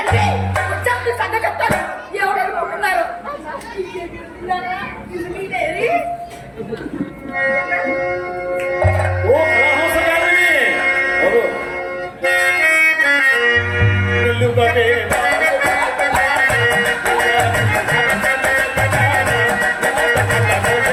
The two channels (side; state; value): both; identical; correlation 1.00